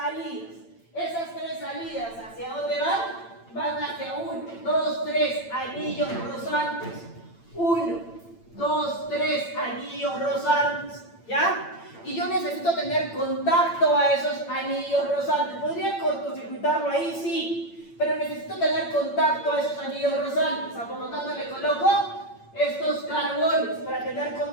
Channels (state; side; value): late; right; 8.8 ms